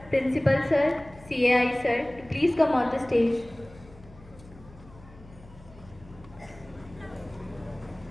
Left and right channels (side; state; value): left; noise; hum, 22 dB below the sound